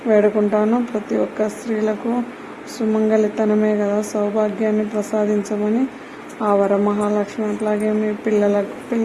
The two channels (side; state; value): both; identical; correlation 1.00